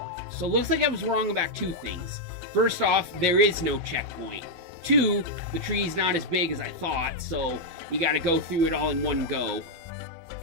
So it looks like I was wrong about two things. First off, there is no checkpoint. Two, the tree's not as big as I thought, so you gotta go through it all in one go.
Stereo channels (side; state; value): left; late; 12 ms